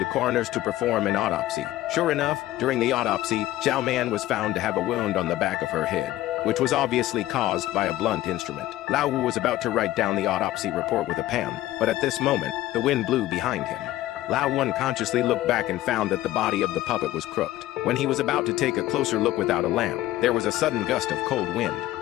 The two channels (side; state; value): right; quieter; 15.2 dB